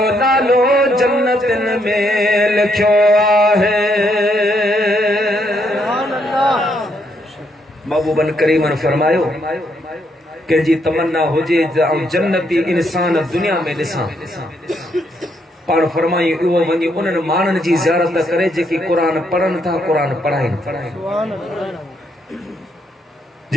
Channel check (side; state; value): both; normal; correlation 0.75